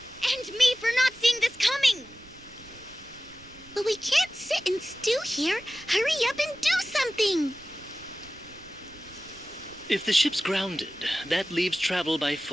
And me for not seeing this coming! But we can't sit and stew here. Hurry up and do something! If the ship's grounded, that leaves travel by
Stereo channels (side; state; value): right; noise; rumble, 23 dB below the sound